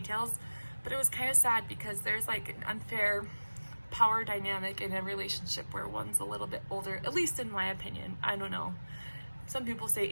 but it was kind of sad because there's like an unfair power dynamic in a relationship where one's a little bit older, at least in my opinion. I don't know. Some people say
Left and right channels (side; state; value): both; inverted; correlation -1.00